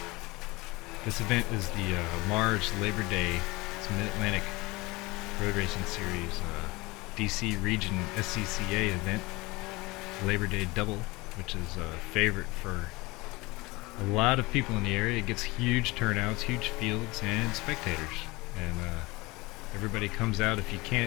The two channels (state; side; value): quieter; right; 22.9 dB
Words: This event is the Mars LaborDay. It's a Mid-Atlantic Road Racing Series DC Region SCCA event, LaborDay Double, which is a favorite for a lot of people in the area. It gets huge turnouts, huge fields, and spectators, and everybody comes out. If you